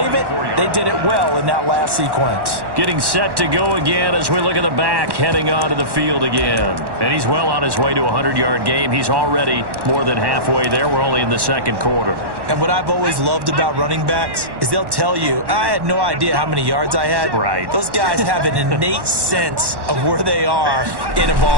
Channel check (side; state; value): left; late; 1.1 ms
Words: it, they did it well in that last sequence. Getting set to go again as we look at the back heading onto the field again. And he's well on his way to a 100-yard game. He's already more than halfway there. We're only in the second quarter. And what I've always loved about running backs is they'll tell you, I had no idea how many yards I had. Right. Those guys have an innate sense of where they are in a